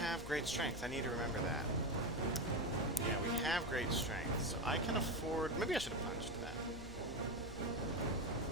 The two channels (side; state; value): left; noise; hum, 12 dB below the sound